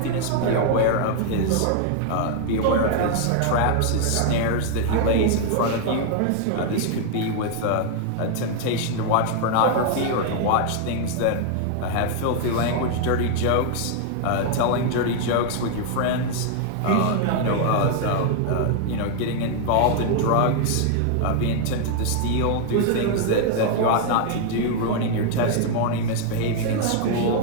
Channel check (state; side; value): different; both; correlation 0.00